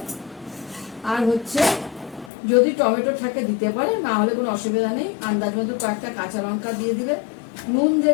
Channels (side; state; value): right; drops out; at 2.3 s